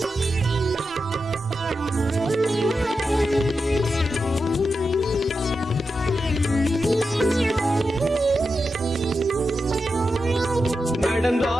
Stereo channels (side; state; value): both; normal; correlation 0.89